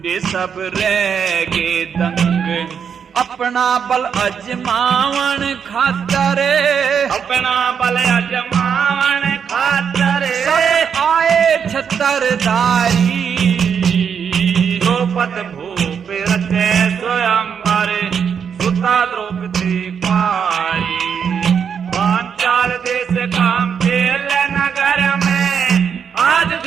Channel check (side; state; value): left; quieter; 7.2 dB